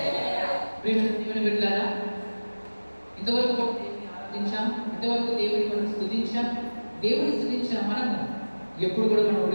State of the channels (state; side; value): inverted; both; correlation -1.00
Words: ప్రియమైన దేవుని బిడ్డలారా, ఇంతవరకు దేవుని ఆరాధించాం, ఇంతవరకు దేవుని మనం స్తుతించాం. దేవుని స్తుతించిన మనము ఎప్పుడు కూడా మనం